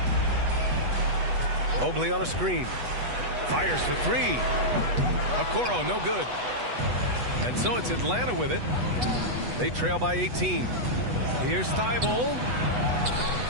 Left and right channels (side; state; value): left; late; 8.1 ms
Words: Mobley on a screen. Fires for 3. Okoro, no good. And so it's Atlanta with it. They trail by 18. Here's Thybulle.